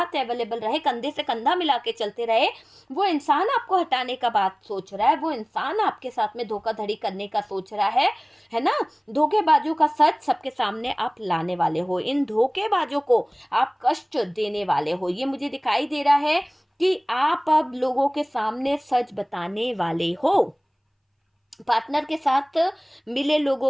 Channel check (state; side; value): identical; both; correlation 1.00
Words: अवेलेबल रहे, कंधे से कंधा मिला के चलते रहे, वो इंसान आपको हटाने का बात सोच रहा है, वो इंसान आपके साथ में धोखाधड़ी करने का सोच रहा है ना। धोखेबाजों का सच सबके सामने आप लाने वाले हो, इन धोखेबाजों को आप कष्ट देने वाले हो। ये मुझे दिखाई दे रहा है कि आप अब लोगों के सामने सच बताने वाले हो, पार्टनर के साथ मिले